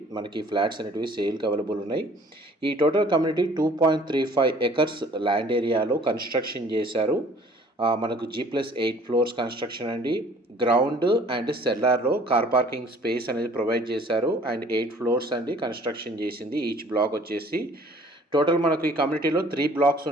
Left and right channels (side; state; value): both; normal; correlation 0.53